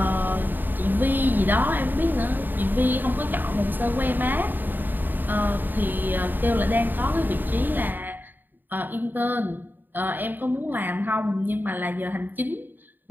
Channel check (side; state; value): left; late; 0.091 ms